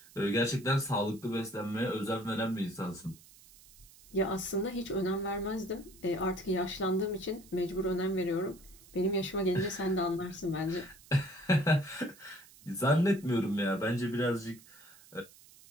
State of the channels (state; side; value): noise; right; hiss, 23 dB below the sound